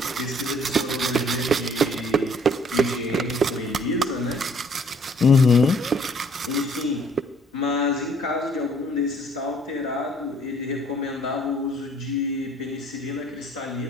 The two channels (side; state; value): both; normal; correlation 0.60